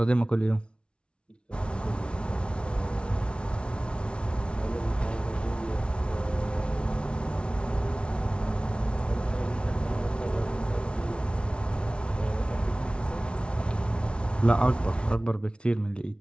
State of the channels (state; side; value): late; right; 0.058 ms